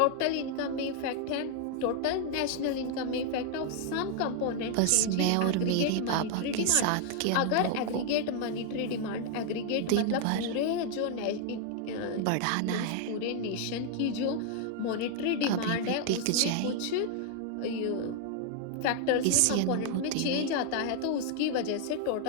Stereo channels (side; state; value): both; different; correlation 0.00